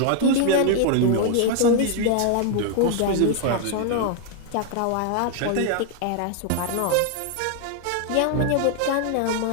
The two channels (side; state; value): both; different; correlation 0.00